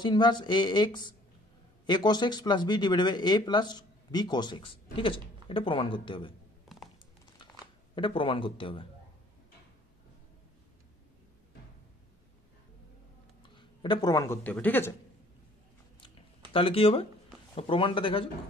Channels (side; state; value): both; normal; correlation 0.57